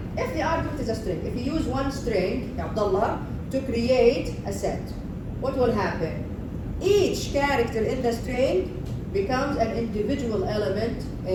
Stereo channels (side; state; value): both; identical; correlation 1.00